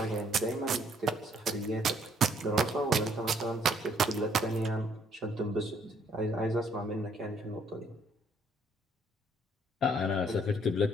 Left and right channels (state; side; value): normal; both; correlation 0.65